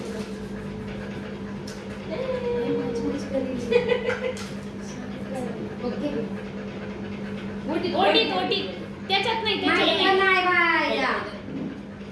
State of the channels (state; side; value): identical; both; correlation 1.00